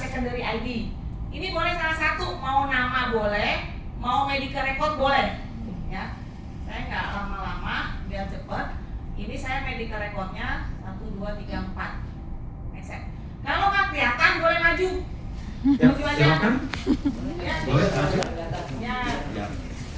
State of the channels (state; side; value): identical; both; correlation 1.00